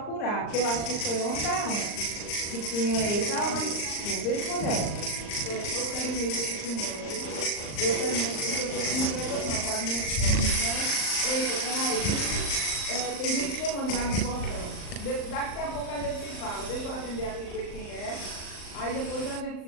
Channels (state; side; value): late; right; 39 ms